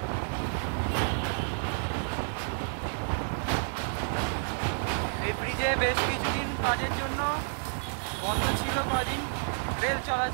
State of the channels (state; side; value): silent; left; digital silence